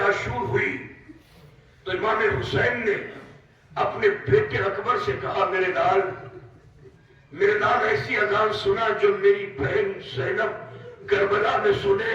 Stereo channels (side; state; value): both; identical; correlation 1.00